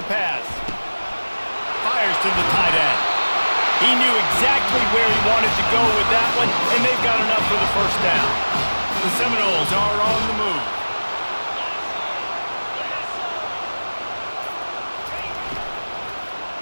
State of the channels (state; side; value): inverted; both; correlation -1.00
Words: pass. Fires to the tight end. He knew exactly where he wanted to go with that one, and they've got enough for the first down. The Seminoles are on the move.